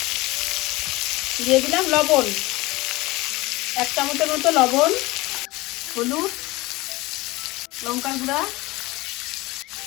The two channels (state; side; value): quieter; right; 21.1 dB